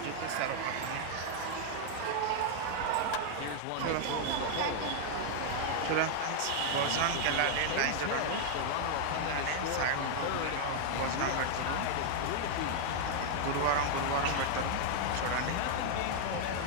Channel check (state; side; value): different; both; correlation 0.00